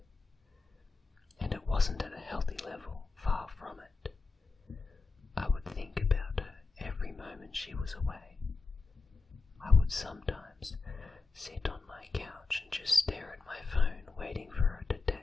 and it wasn't at a healthy level, far from it. I would think about her every moment she was away. I would sometimes sit on my couch and just stare at my phone waiting for her to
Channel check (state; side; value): quieter; right; 4.1 dB